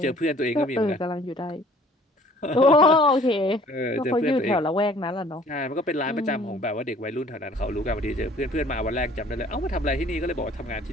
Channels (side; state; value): both; normal; correlation 0.54